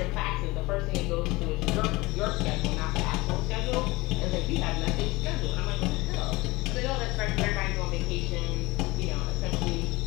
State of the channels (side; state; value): right; quieter; 21.9 dB